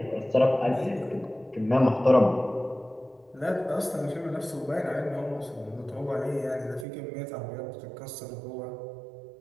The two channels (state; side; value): drops out; left; at 6.9 s